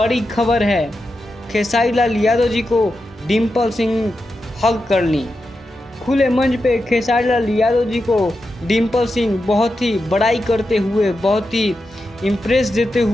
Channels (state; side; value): normal; both; correlation 0.89